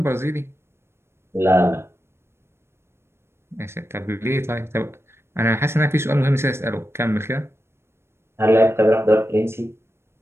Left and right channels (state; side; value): late; left; 0.12 ms